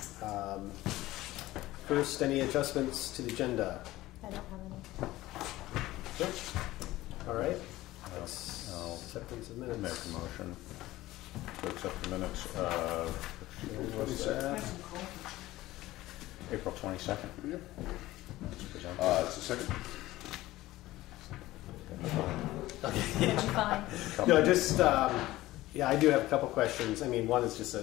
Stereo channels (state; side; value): quieter; right; 17.0 dB